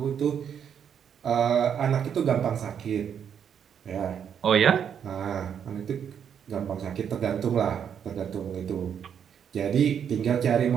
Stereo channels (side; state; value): left; quieter; 8.1 dB